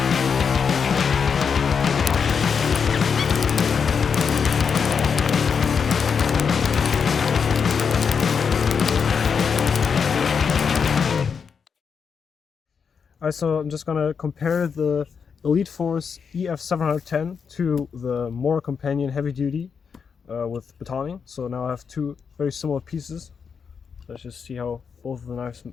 So I'm just gonna compare the Elite Force EF710 to the Mora Companion Heavy Duty with Batoning. So now I have two very similar pieces. Let's just see how both of the knives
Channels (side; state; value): right; quieter; 6.2 dB